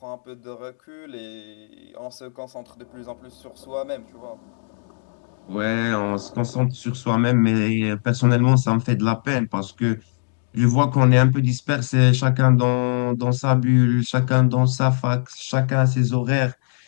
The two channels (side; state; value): right; silent; digital silence